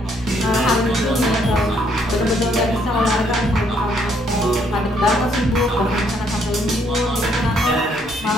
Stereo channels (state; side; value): normal; both; correlation 0.69